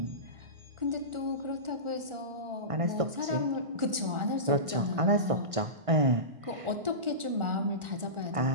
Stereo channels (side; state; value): left; late; 1.4 ms